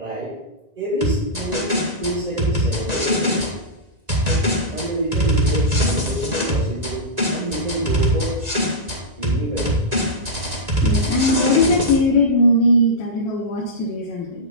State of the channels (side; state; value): left; late; 1.9 ms